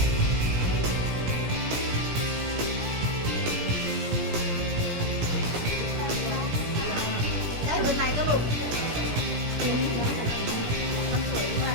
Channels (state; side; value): late; left; 17 ms